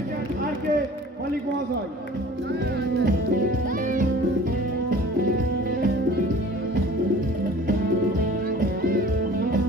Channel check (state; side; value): normal; both; correlation 0.46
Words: আর কে মালিক মহাশয়।